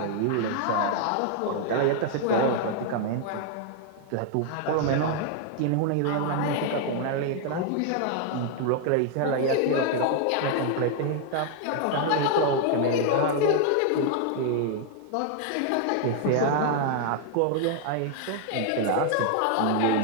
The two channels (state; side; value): different; both; correlation 0.00